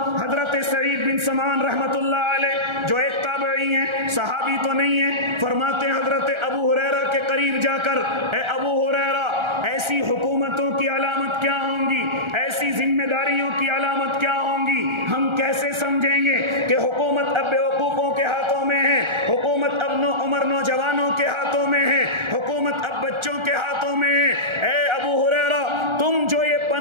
حضرت سعید بن سمعان رحمت اللہ علیہ جو ایک تابعی ہیں، صحابی تو نہیں ہیں، فرماتے ہیں حضرت ابو ہریرہ کے قریب جا کر، اے ابو ہریرہ ایسی حکومتوں کی علامت کیا ہوں گی، ایسی ذمہ داریوں کی علامت کیا ہوں گی، ہم کیسے سمجھیں گے کہ حکومت اب بیوقوفوں کے ہاتھوں میں ہے، حکومت اب عمر نوجوانوں کے ہاتھوں میں ہے، حکومت اب بچوں کے ہاتھوں میں ہے۔ اے ابو ہریرہ تم جو یہ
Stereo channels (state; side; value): late; left; 1.3 ms